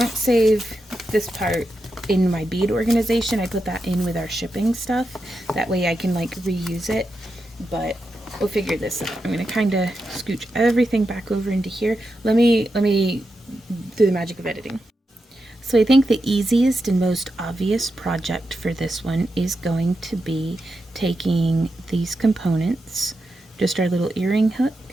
save this part in my bead organization. I put that in with our shipping stuff. That way I can like reuse it. But we'll figure this out. I'm going to kind of scooch everything back over into here. Let me do the magic of editing. So I think the easiest and most obvious project for this one is going to be taking these components, just our little earring hook,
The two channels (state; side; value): normal; both; correlation 0.88